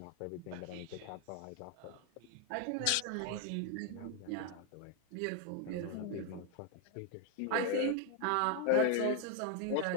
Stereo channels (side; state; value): both; different; correlation 0.00